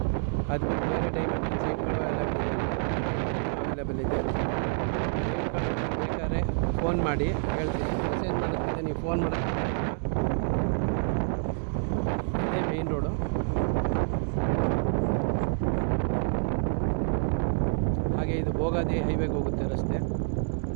ಅದು ಬಿಟ್ಟು ಬೇರೆ ಡೈಮೆಂಟ್ ಸೈಟ್ಗಳು ಅವೈಲೇಬಲ್ ಇದೆ. ಬೇಕಾದ್ರೆ ಫೋನ್ ಮಾಡಿ ಹೇಳ್ತೀನಿ. ಮೆಸೇಜ್ ಮಾಡೋದ್ಕಿಂತ ನೀವು ಫೋನ್ ಮಾಡೋಕ್ಕೆ ಇದೇ ಮೇಯ್ನ್ ರೋಡು. ಹಾಗೆ ಇದು ಭೋಗಾದಿ ಹೈವೇಗೆ ಹೋಗುತ್ತೆ ರಸ್ತೆ.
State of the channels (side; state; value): left; silent; digital silence